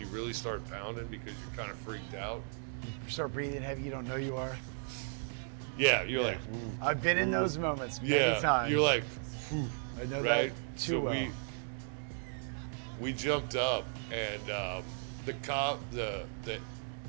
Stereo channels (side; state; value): left; silent; digital silence